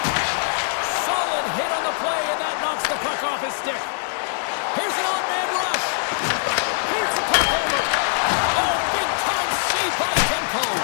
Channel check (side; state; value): right; silent; digital silence